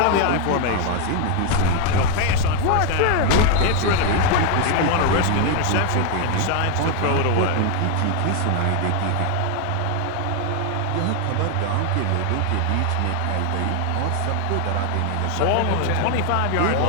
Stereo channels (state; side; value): different; both; correlation 0.01